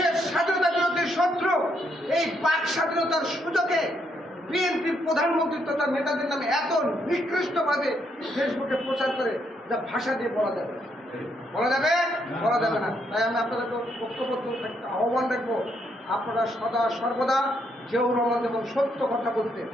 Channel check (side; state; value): both; normal; correlation 0.75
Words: স্বাধীনতা বিরোধী শত্রু এই বাক স্বাধীনতার সুযোগে বিএনপির প্রধানমন্ত্রী তথা নেতাদের নামে এত নিকৃষ্টভাবে ফেসবুকে প্রচার করে যা ভাষা দিয়ে বলা যাবে না। তাই আমি আপনাদেরকে ঐক্যবদ্ধ একটা আহ্বান রাখবো, আপনারা সদা সর্বদা জিয়াউর রহমান এবং সত্য কথা বলতেন,